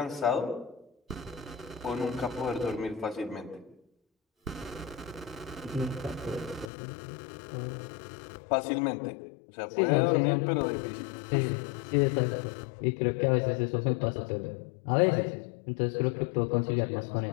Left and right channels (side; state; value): right; drops out; at 6.7 s